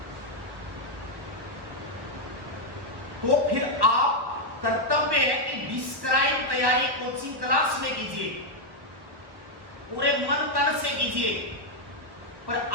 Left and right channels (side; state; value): left; late; 1.1 ms